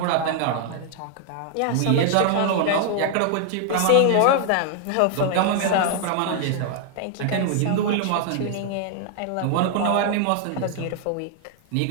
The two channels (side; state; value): both; different; correlation 0.00